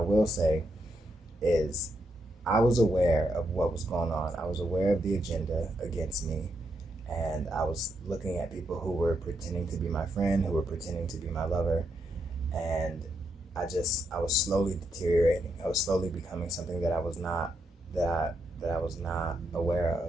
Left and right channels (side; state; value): both; normal; correlation 0.80